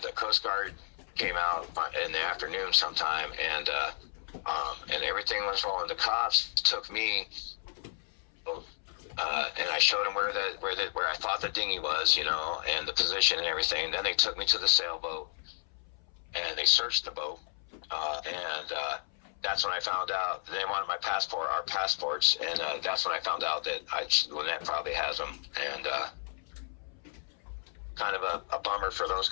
the Coast Guard came out in the afternoon sometime, and everything was rolling. The cops took me, and I showed them where I thought the dinghy was, you know, and the position and everything. Then they took me to the sailboat, and they searched the boat, and that's when I found out they wanted our passports, and that's when I found out that Lynette probably has them, and kind of a bummer for those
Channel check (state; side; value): silent; right; 56 dB below the other